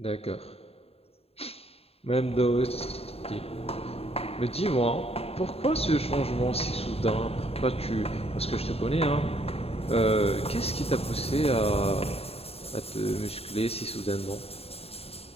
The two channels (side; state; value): right; late; 0.29 ms